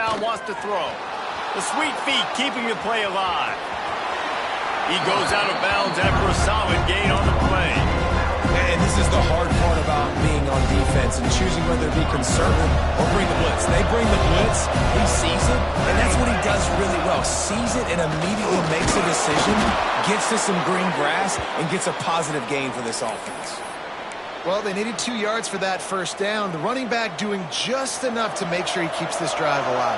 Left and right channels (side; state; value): both; identical; correlation 1.00